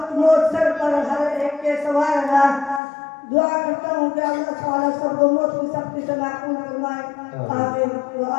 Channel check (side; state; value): right; drops out; at 2.8 s